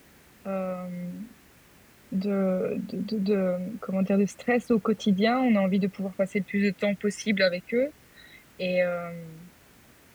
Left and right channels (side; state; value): both; identical; correlation 1.00